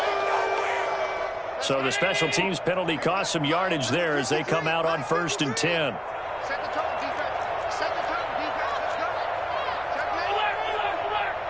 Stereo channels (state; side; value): identical; both; correlation 1.00